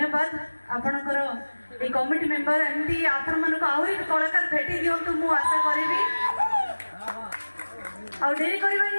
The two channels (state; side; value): inverted; both; correlation -1.00